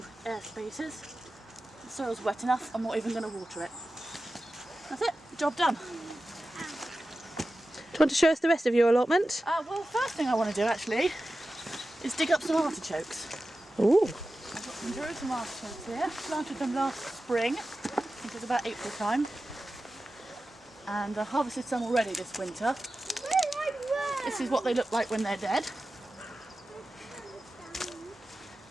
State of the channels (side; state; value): both; normal; correlation 0.94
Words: air spaces. The soil's wet enough, I'm not even going to water it. That's it, job done. Do you want to show us the rest of your allotment? Well, first thing I want to do actually is dig up some artichokes. Ooh. I've got some Jerusalem artichokes here. Planted them last spring, I think it was about April time. And I harvested some already this winter. This is what they look like when they're dead.